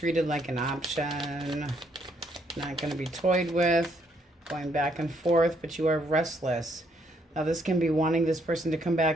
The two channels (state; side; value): normal; both; correlation 0.71